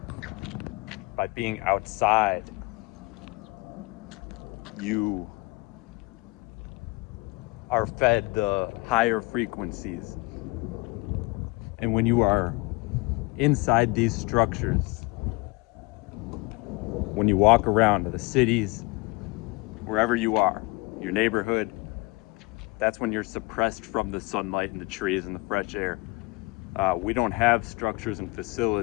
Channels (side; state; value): right; quieter; 25.0 dB